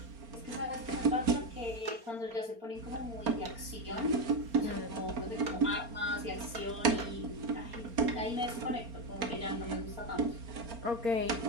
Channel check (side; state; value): left; late; 4.3 ms